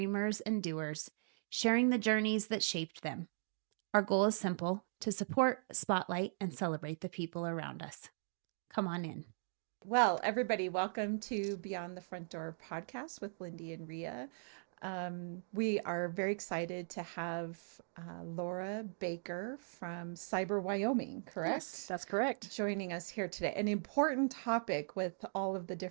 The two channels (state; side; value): silent; left; digital silence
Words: and doers, sharing the journeys that shaped them. Our goal is simple: to support, spotlight, and celebrate the people around us. Come on in. Well, everybody, welcome to Beyond the Front Door podcast with Lindy and Rhea. We are very excited to have Laura Baker from Cyber Wyoming, correct? Yes, that's correct. Joining us here today. An important topic with all of the